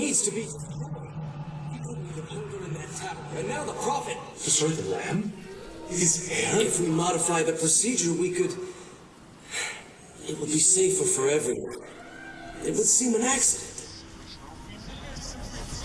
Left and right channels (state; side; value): identical; both; correlation 1.00